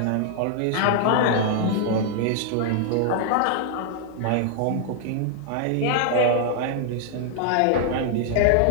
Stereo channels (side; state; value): both; different; correlation -0.01